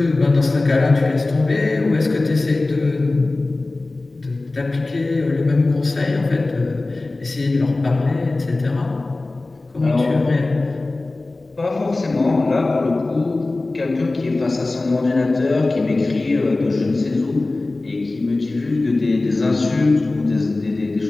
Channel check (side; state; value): right; quieter; 3.1 dB